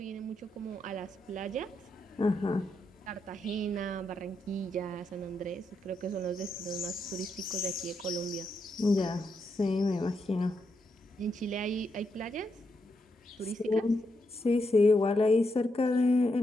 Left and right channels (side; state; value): both; normal; correlation 0.81